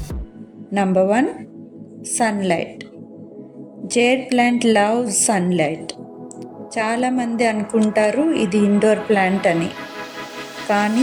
Number 1, sunlight. Jade plant loves sunlight. చాలామంది అనుకుంటారు ఇది ఇండోర్ ప్లాంట్ అని, కానీ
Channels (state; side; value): identical; both; correlation 1.00